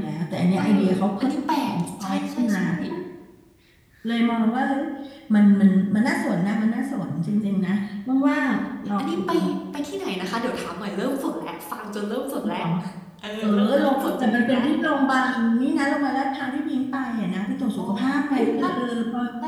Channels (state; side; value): identical; both; correlation 1.00